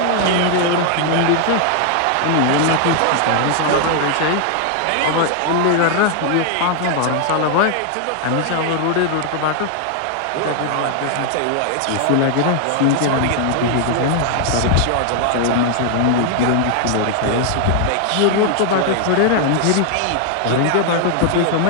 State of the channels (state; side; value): different; both; correlation 0.00